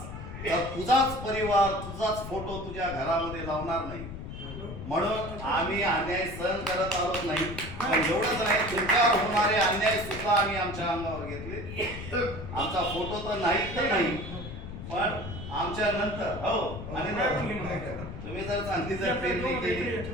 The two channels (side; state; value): left; noise; rumble, 9 dB below the sound